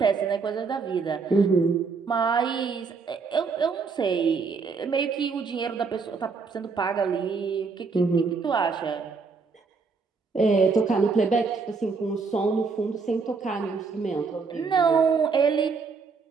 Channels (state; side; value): quieter; left; 4.9 dB